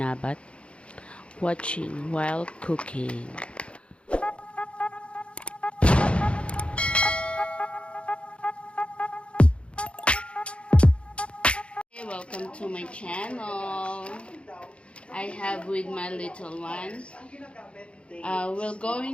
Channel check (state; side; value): late; right; 0.059 ms